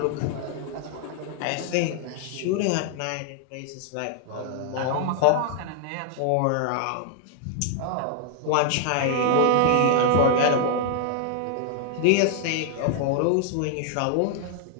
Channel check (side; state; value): both; different; correlation 0.00